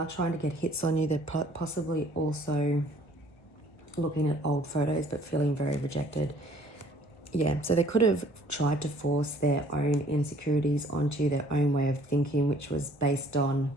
trying to get hits on you. They're possibly also looking at old photos, but feeling very rejected. Yeah, so they could have tried to force their own insecurities onto you, their own way of thinking, which was based on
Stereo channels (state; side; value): late; right; 1.2 ms